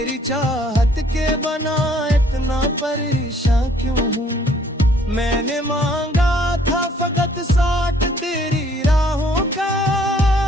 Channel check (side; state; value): both; normal; correlation 0.61